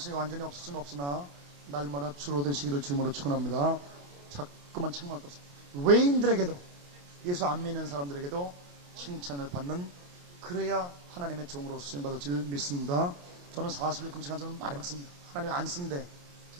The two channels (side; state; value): left; late; 28 ms